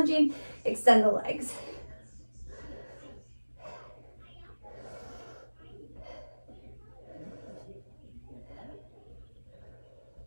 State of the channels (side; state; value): both; inverted; correlation -1.00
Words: extend the legs.